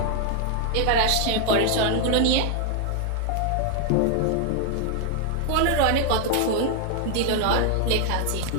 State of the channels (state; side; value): different; both; correlation 0.00